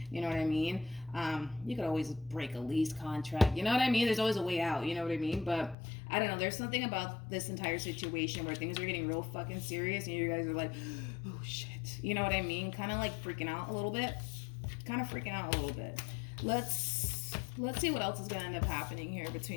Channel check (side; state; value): right; drops out; at 5.8 s